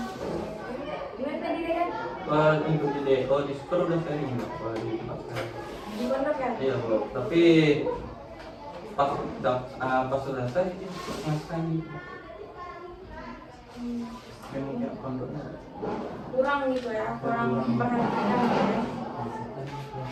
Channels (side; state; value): both; identical; correlation 1.00